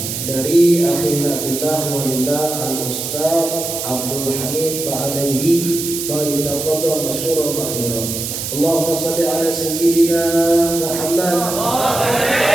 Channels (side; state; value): right; noise; hiss, 5 dB below the sound